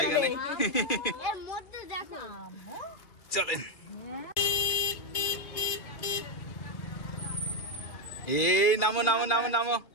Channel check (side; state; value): right; late; 2.4 ms